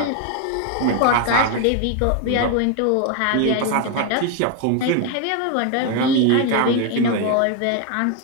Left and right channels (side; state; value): both; different; correlation 0.01